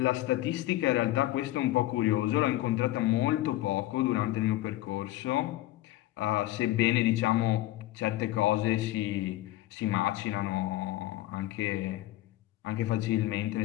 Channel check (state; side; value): quieter; right; 15.9 dB